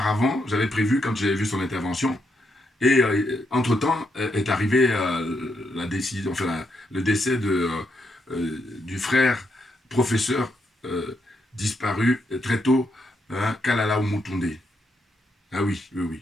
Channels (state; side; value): normal; both; correlation 0.80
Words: j'avais prévu quand j'avais vu son intervention. Et entre-temps est arrivé la décision, enfin, le décès du frère professeur disparu très tôt, hein, Kalala Oumutoundé. Ah oui, oui, oui.